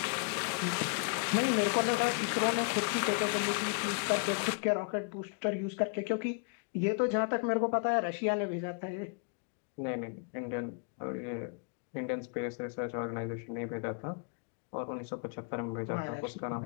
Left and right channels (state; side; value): quieter; right; 37.4 dB